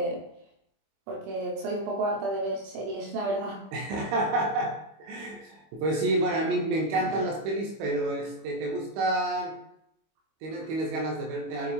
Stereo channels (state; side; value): late; left; 25 ms